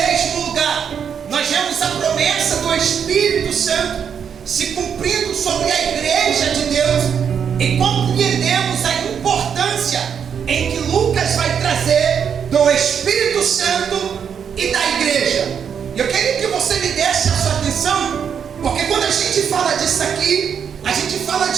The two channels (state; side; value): quieter; left; 7.5 dB